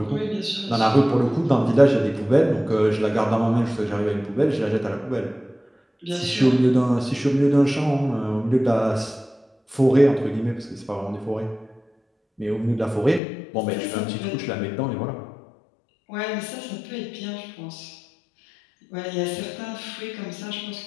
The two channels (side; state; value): right; drops out; at 13.2 s